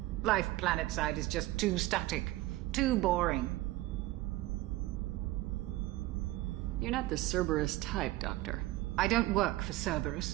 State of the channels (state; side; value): quieter; left; 17.9 dB